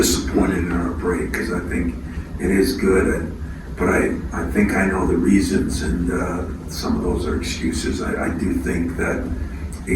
in our break because I think it is good. But I think I know the reasons, and some of those are excuses. I do think that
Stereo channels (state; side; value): identical; both; correlation 1.00